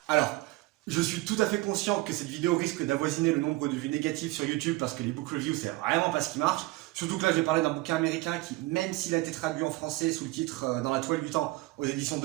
Alors, je suis tout à fait conscient que cette vidéo risque d'avoisiner le nombre de vues négatives sur YouTube parce que les book reviews c'est vraiment pas ce qui marche. Surtout que là je vais parler d'un bouquin américain qui, même s'il a été traduit en français sous le titre Dans la toile du temps aux éditions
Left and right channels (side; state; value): left; quieter; 20.2 dB